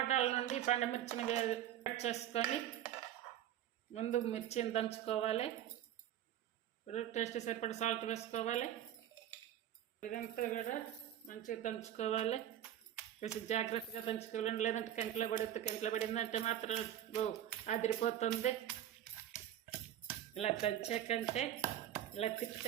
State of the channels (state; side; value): quieter; left; 11.6 dB